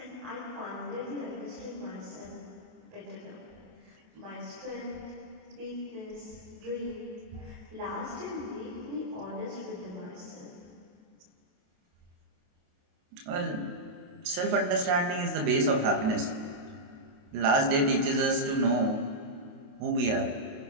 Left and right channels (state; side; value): late; left; 28 ms